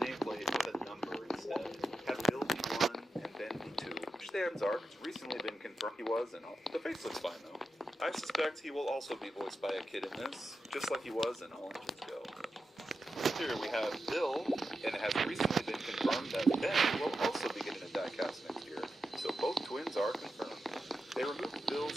with a number instead. Have Bill be 1 and Ben be 2. Which stands are recently been confirmed he was, and the face looks fine though. I suspect he will also be voiced by a kid in this, just like he was in All Engines Go. Here we have Bill, and it has recently been confirmed that Ben will also be getting a diecast next year. So both twins are confirmed. They removed Bill's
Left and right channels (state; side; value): normal; both; correlation 0.89